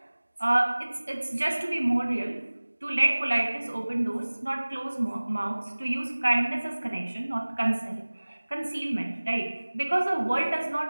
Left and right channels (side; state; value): both; inverted; correlation -1.00